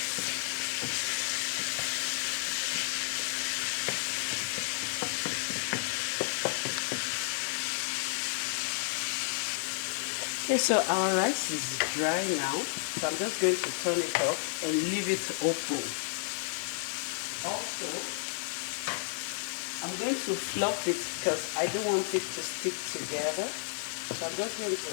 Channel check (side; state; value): right; silent; digital silence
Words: Okay, so our rice is dry now, so I'm just going to turn it off and leave it open. Also, I'm going to fluff it because I don't want it to stick together. So I'm just going to